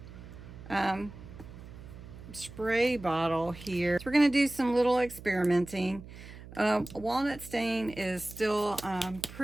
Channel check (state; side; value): noise; right; hum, 16 dB below the sound